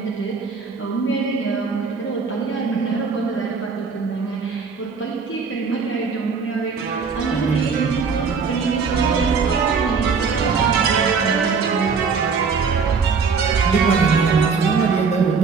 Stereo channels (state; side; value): quieter; left; 5.3 dB